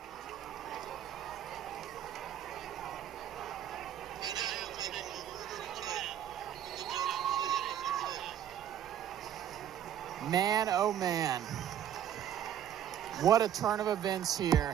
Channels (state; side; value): quieter; left; 10.3 dB